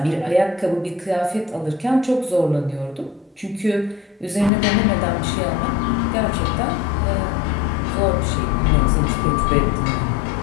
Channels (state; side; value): drops out; right; at 4.5 s